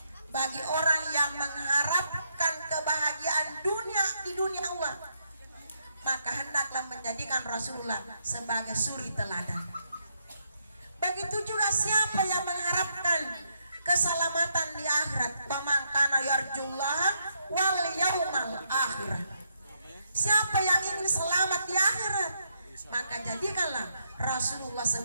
bagi orang yang mengharapkan kebahagiaan dunia di dunia Allah, maka hendaklah menjadikan Rasulullah sebagai suri teladan. Begitu juga siapa yang mengharapkan keselamatan di akhirat, faman kana yarjullaha wal yaumal akhir. Siapa yang ingin selamat di akhirat, maka jadikanlah Rasulullah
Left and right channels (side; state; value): both; inverted; correlation -0.77